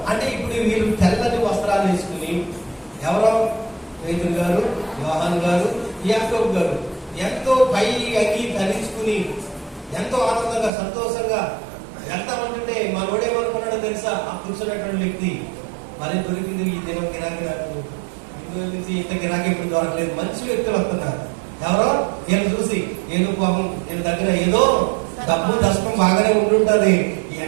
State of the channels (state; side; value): drops out; left; at 10.7 s